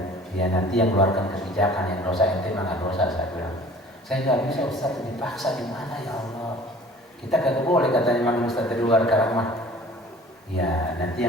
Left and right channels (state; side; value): normal; both; correlation 0.48